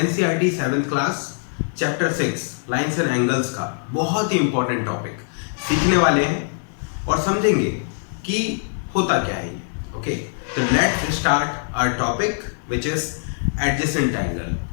7th class chapter 6 lines and angles का बहुत ही इम्पोर्टेंट टॉपिक सीखने वाले हैं और समझेंगे कि होता क्या है। ओके, तो let's start our topic which is adjacent angle,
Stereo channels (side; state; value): right; silent; digital silence